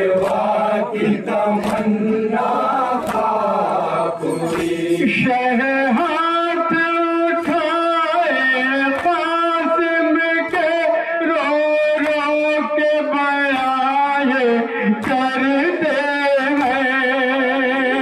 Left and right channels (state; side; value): identical; both; correlation 1.00